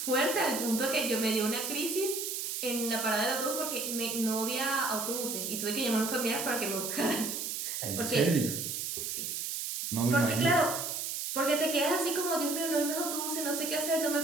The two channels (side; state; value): right; noise; hiss, 3 dB below the sound